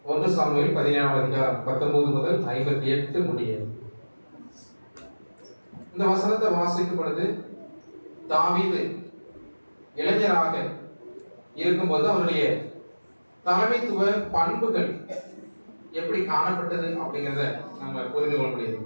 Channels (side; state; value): both; inverted; correlation -1.00